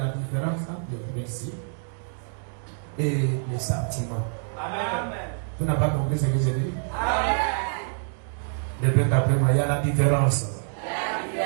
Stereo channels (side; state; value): left; silent; digital silence